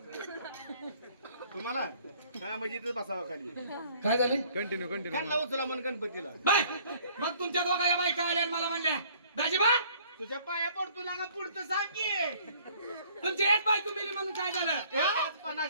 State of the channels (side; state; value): both; inverted; correlation -0.57